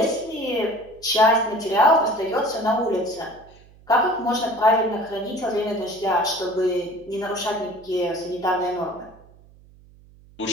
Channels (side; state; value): right; noise; hum, 25 dB below the sound